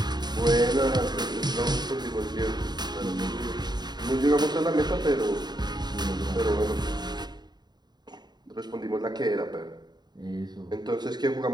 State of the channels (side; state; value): left; late; 0.20 ms